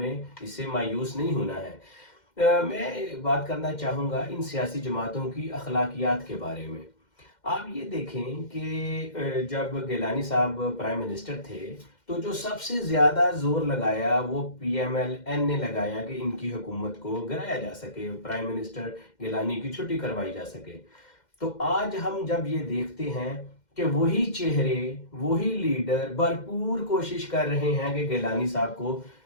اس سے مایوس نہیں ہونا ہے. میں بات کرنا چاہوں گا ان سیاسی جماعتوں کی اخلاقیات کے بارے میں. آپ یہ دیکھیں کہ جب گیلانی صاحب پرائم منسٹر تھے تو جو سب سے زیادہ زور لگایا وہ پی ایم ایل این نے لگایا کہ ان کی حکومت کو گرایا جا سکے، پرائم منسٹر گیلانی کی چھٹی کروائی جا سکے. تو آج ہم جب یہ دیکھتے ہیں کہ وہی چہرے، وہی لیڈر بھرپور کوشش کر رہے ہیں کہ گیلانی صاحب کو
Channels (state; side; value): late; right; 2.1 ms